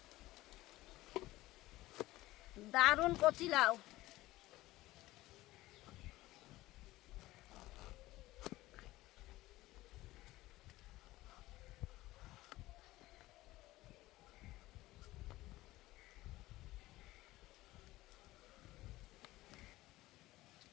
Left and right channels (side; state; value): right; quieter; 17.6 dB